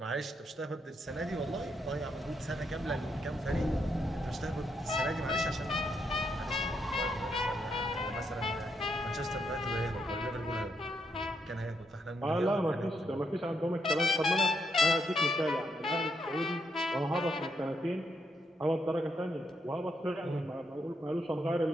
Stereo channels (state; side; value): normal; both; correlation 0.78